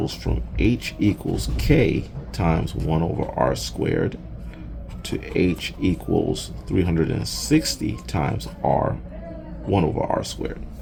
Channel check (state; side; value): identical; both; correlation 1.00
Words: from h equals k times 1 over r squared to h equals 360 times r 1 over r squared.